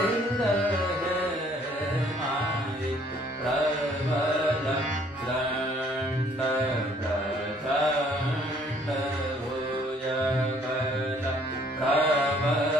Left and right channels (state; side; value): normal; both; correlation 0.61